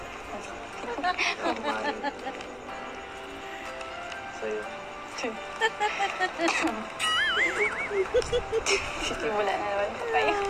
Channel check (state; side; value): identical; both; correlation 1.00